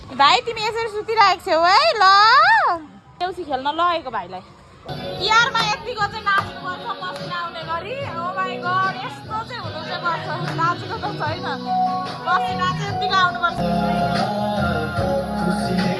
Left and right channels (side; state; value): both; identical; correlation 1.00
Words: भाइ तिमी यसरी सुतिरहेको छौ है। ल देउसी खेल्न लगेको भाइलाई। तिहारमा यतिको चाहिँ नाच्नुपर्छ पसिना आउने गरी। ओ माई गड, यस्तो चाहिँ हुनु चाहिँ पर्छ। नाचेको त छैन, पसिना चाहिँ यतिको आउनुपर्छ।